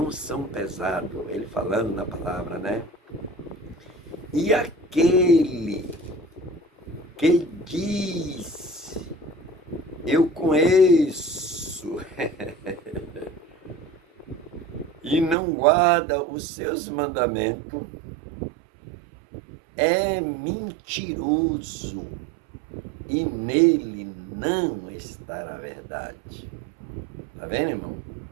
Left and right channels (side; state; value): left; drops out; at 15.4 s